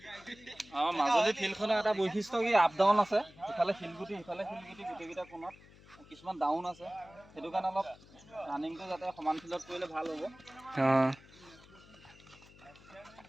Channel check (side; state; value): left; noise; hum, 23 dB below the sound